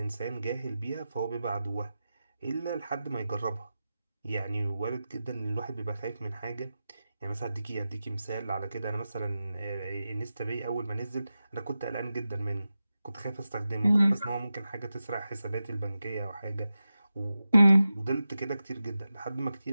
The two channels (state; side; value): inverted; both; correlation -0.93